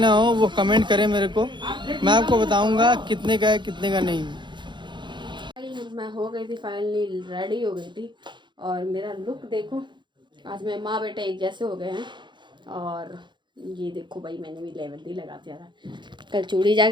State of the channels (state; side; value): late; left; 0.23 ms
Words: हो वो कमेंट करे मेरे को, मैं आपको बताऊंगा कितने का है कितने का नहीं। मैं हो गई थी फाइनली, रेडी हो गई थी, और मेरा लुक देखो, आज मैं माँ बेटा एक जैसे हो गए हैं। और ये देखो भाई, मैंने भी मेहंदी लगा दिया था, कल चूड़ी